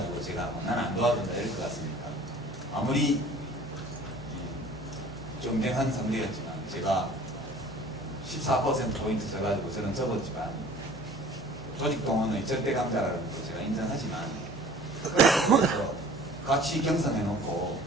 제가 난 안 도와준다 이럴 것 같습니까? 아무리 경쟁한 상대였지만 제가 14%포인트 져가지고 저는 접었지만 조직동원의 절대 강자라는 거 제가 인정하지만 그래서 같이 경선해놓고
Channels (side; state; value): both; normal; correlation 0.47